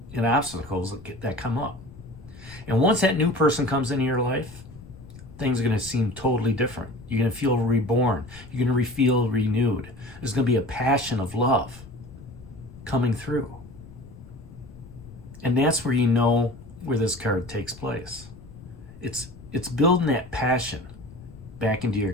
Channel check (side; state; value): left; noise; rumble, 18 dB below the sound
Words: obstacles that come up. And once that new person comes into your life, things are going to seem totally different. You're going to feel reborn. You're going to feel renewed. There's going to be a passion of love coming through. And that's where where this card takes place. It's building that passion back into your